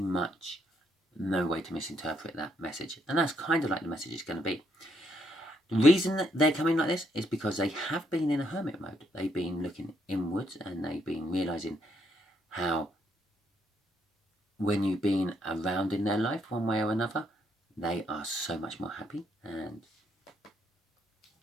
no way to misinterpret that message. And that's kind of like the message is going to be. The reason that they're coming like this is because they have been in a hermit mode. They've been looking inwards and they've been realizing how when you've been around in their life one way or another, they are so much more happy and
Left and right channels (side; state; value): both; normal; correlation 0.74